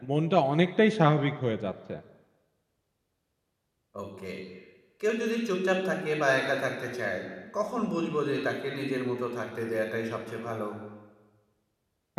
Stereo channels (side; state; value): both; identical; correlation 1.00